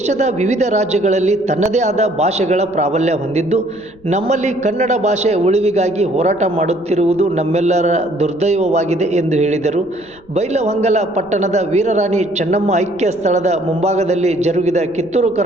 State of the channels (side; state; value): left; noise; rumble, 27 dB below the sound